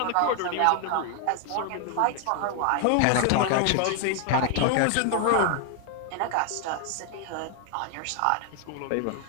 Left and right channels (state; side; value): different; both; correlation 0.00